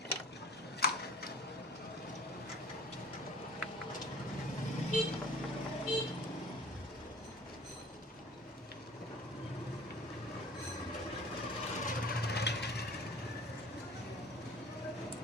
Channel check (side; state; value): both; normal; correlation 0.46